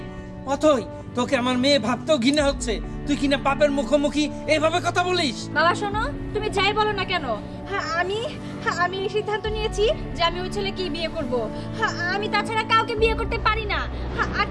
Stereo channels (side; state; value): both; identical; correlation 1.00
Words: অথই তোকে আমার মেয়ে ভাবতেও ঘৃণা হচ্ছে। তুই কিনা পাপের মুখোমুখি এইভাবে কথা বলিস? বাবা শোনো, তুমি যাই বলো না কেন, আমি এই সিদ্ধান্ত নিয়েছি যে আমি ওই ছেলেকেই বিয়ে করব। আমি তাছাড়া কাউকে বিয়ে করতে পারি না। আর